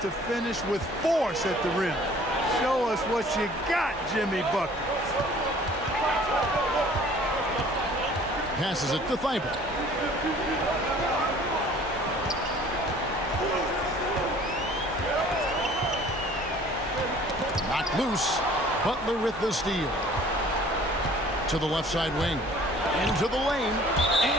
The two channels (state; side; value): normal; both; correlation 0.52